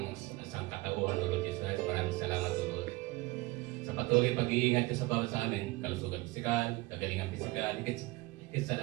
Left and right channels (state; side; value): quieter; left; 22.0 dB